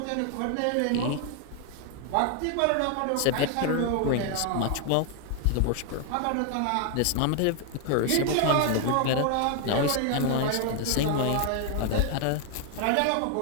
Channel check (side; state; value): both; different; correlation 0.00